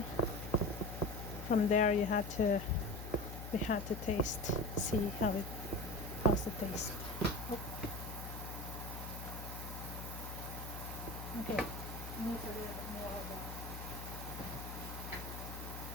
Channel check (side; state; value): left; noise; hum, 8 dB below the sound